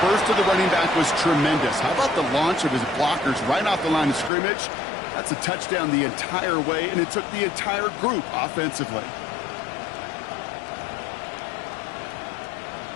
burst of the running back was tremendous. How about the launch of his blockers right off the line of scrimmage? That's a touchdown the entire way, and it took the entire group offensively.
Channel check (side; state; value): right; drops out; at 4.3 s